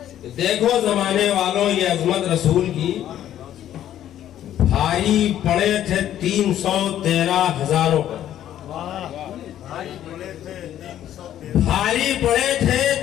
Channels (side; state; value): right; quieter; 11.5 dB